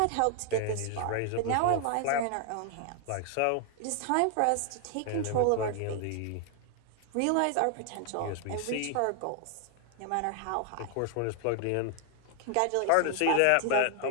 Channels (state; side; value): different; both; correlation 0.00